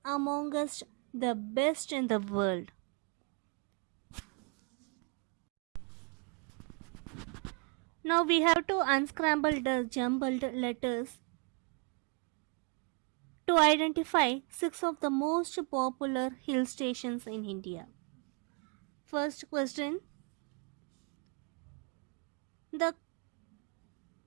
amongst the best in the world. Now we have to unscramble the jumbled letters to identify 6 of the most popular hill stations in India. First question. The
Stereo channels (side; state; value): left; quieter; 37.6 dB